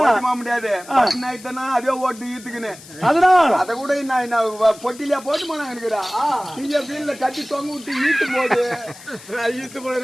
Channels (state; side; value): noise; left; hiss, 19 dB below the sound